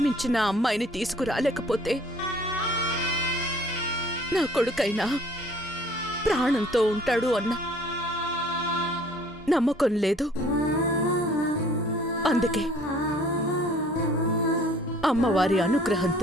అమ్మాయిని తీసుకురాలేకపోతే నా కొడుకైనా ప్రాణంతో ఉంటాడు అన్న నమ్మకం లేదు. అందుకే అమ్మవారి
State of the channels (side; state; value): both; normal; correlation 0.54